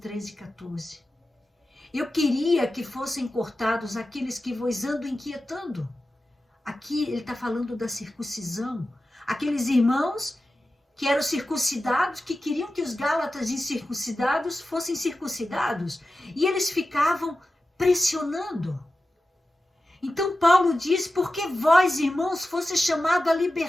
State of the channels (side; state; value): both; normal; correlation 0.93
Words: e 14. Eu queria que fossem cortados aqueles que vos andam inquietando. Aqui ele está falando da circuncisão. Aqueles irmãos que eram circuncidados, que queriam que os gálatas incircuncidados fossem circuncidados. E eles ficavam pressionando. Então Paulo diz, porque vós, irmãos, fosse chamado à